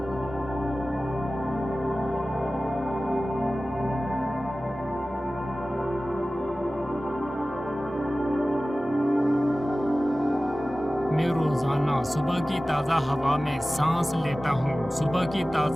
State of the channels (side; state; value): both; normal; correlation 0.97